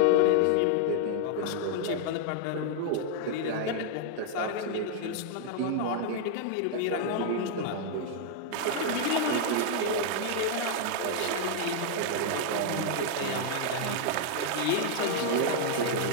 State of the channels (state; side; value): different; both; correlation 0.00